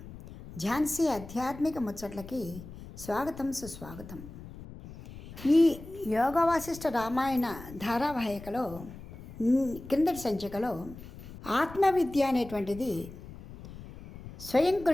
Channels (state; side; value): noise; left; rumble, 15 dB below the sound